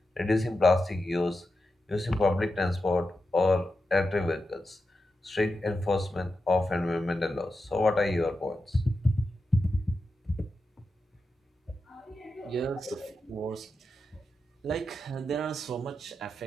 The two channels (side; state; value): both; normal; correlation 0.89